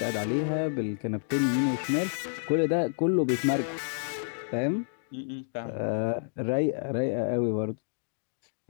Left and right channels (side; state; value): right; silent; digital silence